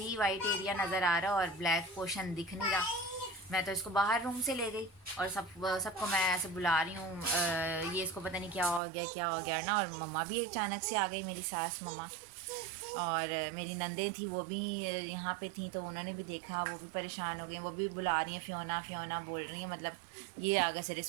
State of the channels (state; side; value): drops out; left; at 8.8 s